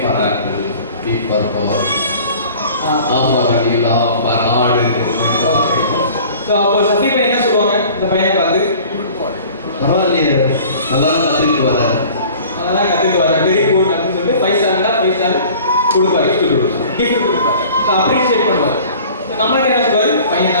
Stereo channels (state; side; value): inverted; both; correlation -0.47